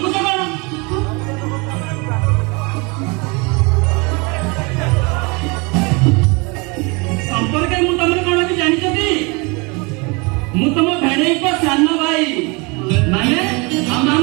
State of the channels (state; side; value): quieter; left; 29.0 dB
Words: से बन संपर्क मु तमरे कोन की जानि छथि मु तम भेणै को सानो भाई माने हम